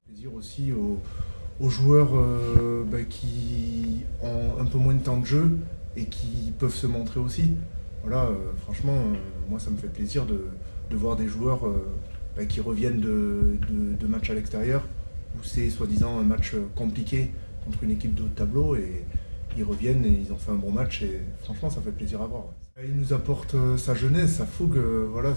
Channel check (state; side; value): inverted; both; correlation -1.00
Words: Plaisir aussi aux joueurs qui ont un peu moins de temps de jeu et qui peuvent se montrer aussi. Voilà, franchement, moi ça me fait plaisir de voir des joueurs qui reviennent de matchs à l'extérieur, où c'est soi-disant un match compliqué contre une équipe de haut de tableau, et ils reviennent et ils ont fait un bon match, et franchement ça fait plaisir à voir. Il nous apporte sa jeunesse, sa fougue, voilà,